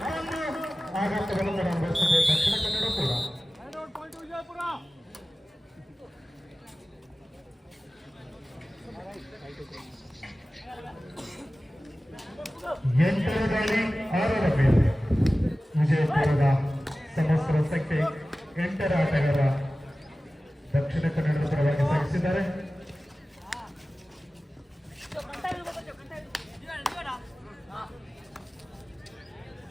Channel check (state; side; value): normal; both; correlation 0.96